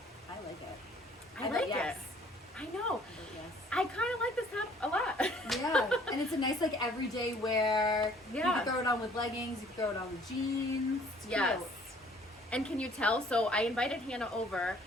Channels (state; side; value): normal; both; correlation 0.57